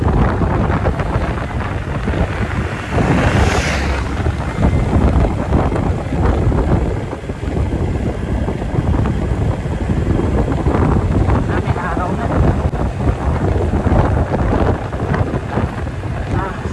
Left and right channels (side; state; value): both; identical; correlation 1.00